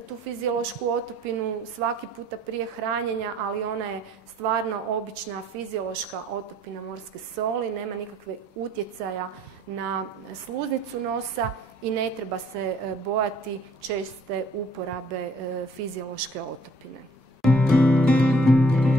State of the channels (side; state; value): both; normal; correlation 0.58